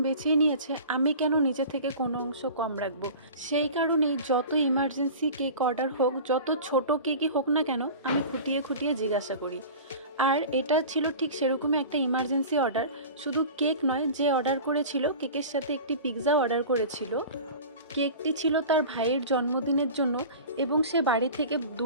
বেছে নিয়েছে, আমি কেন নিজে থেকে কোনো অংশ কম রাখবো। সেই কারণেই যত ইমার্জেন্সি কেক অর্ডার হোক, যত ছোট কেকই হোক না কেন, আমি খুঁটিয়ে খুঁটিয়ে জিজ্ঞাসা করি। আর এটা ছিল ঠিক সেরকমই একটা ইমার্জেন্সি অর্ডার। শুধু কেক নয়, যে অর্ডার করেছিল কেকের সাথে একটি পিৎজা অর্ডার করেছিল। কেকটি ছিল তার ভাইয়ের জন্মদিনের জন্য, এবং সে বাড়ি থেকে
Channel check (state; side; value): inverted; both; correlation -0.37